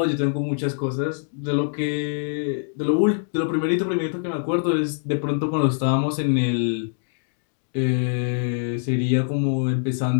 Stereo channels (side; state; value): right; silent; digital silence